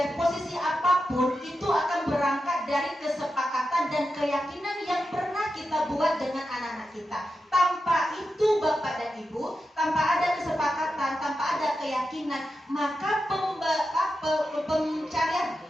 posisi apapun itu akan berangkat dari kesepakatan dan keyakinan yang pernah kita buat dengan anak-anak kita. Tanpa itu Bapak dan Ibu, tanpa ada kesepakatan, tanpa ada keyakinan, maka pencarian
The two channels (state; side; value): normal; both; correlation 0.89